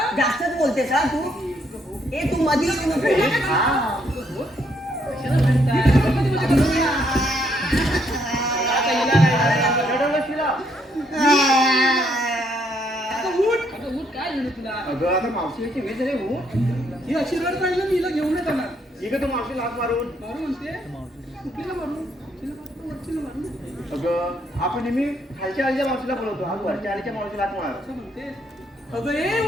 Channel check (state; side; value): normal; both; correlation 0.71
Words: जास्तच बोलतेस हा तू. ए तू मधी येऊ नको. कशाला म्हणताय? आता हिला काय रडवलं शिला. आता उठ. अगं उठ काय झालं तुला. अगं आता मावशीची वेळ झाली हो. ही अशी रड पाहिजे मी हिला घेऊन येत येणार. ठीक आहे तू मावशी लाग मारून. मारू म्हणते कुठलीला मारू तिला मारू, वरचीला मारू अगं आपण नेहमी खालच्या आलीच्या मावशीला बोलवतो, आज वरच्या आलीच्या मावशीला लाग मार. असं म्हणते. अगं ए